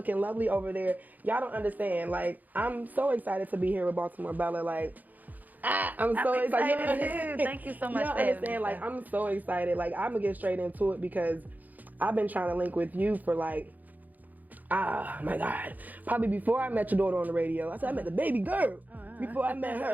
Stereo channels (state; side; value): late; left; 0.082 ms